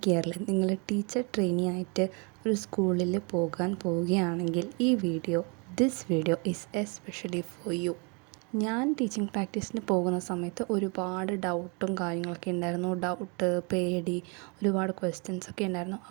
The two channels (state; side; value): quieter; left; 33.0 dB